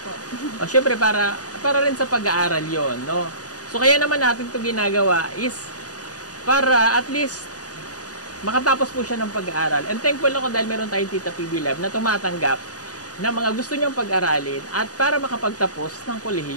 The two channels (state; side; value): late; right; 0.68 ms